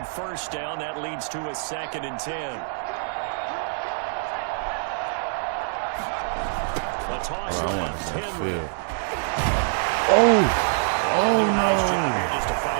down. That leads to a 2nd and 10. Toss left, Henry. Oh no! Just to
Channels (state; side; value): silent; left; digital silence